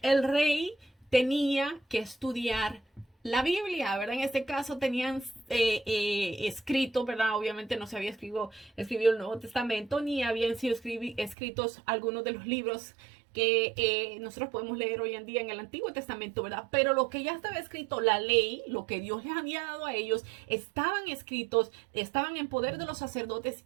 el rey tenía que estudiar la Biblia, ¿verdad? En este caso tenían escrito, ¿verdad? Obviamente no se había escrito el Nuevo Testamento, ni habían sido escritos algunos de los libros que nosotros podemos leer hoy en día en el Antiguo Testamento, ¿verdad? Pero lo que ya estaba escrito, la ley, lo que Dios les había dado a ellos, estaban escritos, estaban en poder de los sacerdotes,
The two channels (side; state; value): left; drops out; at 11.4 s